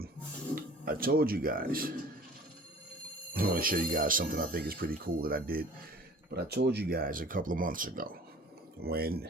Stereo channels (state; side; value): normal; both; correlation 0.47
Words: I told you guys, I want to show you guys something I think is pretty cool that I did, but I told you guys a couple of months ago when